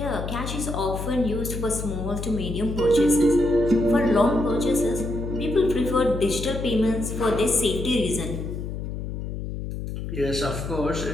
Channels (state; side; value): noise; left; hum, 6 dB below the sound